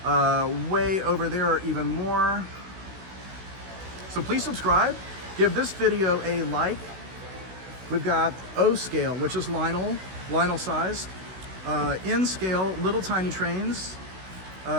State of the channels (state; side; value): late; left; 16 ms